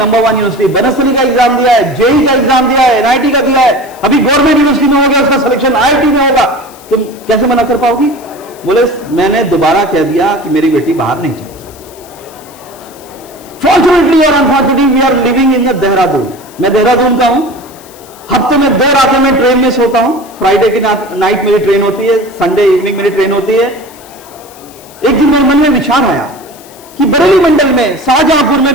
1 यूनिवर्सिटी, बनस्थली का एग्जाम दिया है, जेई का एग्जाम दिया है, एनआईटी का दिया है, अभी गवर्नमेंट यूनिवर्सिटी में हो गया, उसका सिलेक्शन आईआईटी में होगा। तुम कैसे मना कर पाओगी? बोले मैंने दोबारा कह दिया कि मेरी बेटी बाहर नहीं जाएगी। फॉर्चुनेटली और unfortunately we are living in the Dehradun. मैं देहरादून का हूं, हफ्ते में 2 रातें मैं ट्रेन में सोता हूं। फ्राइडे की नाइट मेरी ट्रेन होती है, संडे इवनिंग मेरी ट्रेन होती है। एक दिन मेरे मन में विचार आया कि बरेली मंडल में, शाहजहांपुर में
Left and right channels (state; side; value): noise; left; hiss, 23 dB below the sound